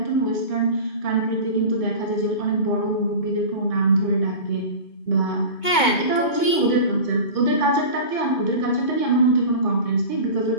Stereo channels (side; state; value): right; late; 2.2 ms